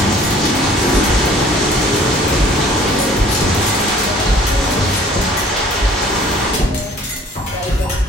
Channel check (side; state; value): both; normal; correlation 0.52